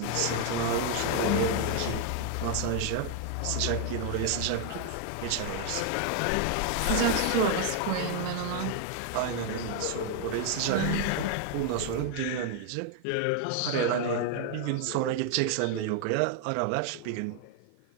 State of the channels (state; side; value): different; both; correlation 0.00